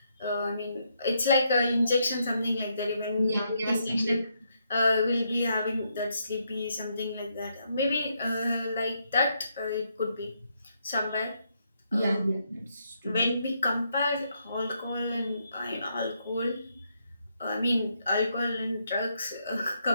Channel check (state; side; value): inverted; both; correlation -0.77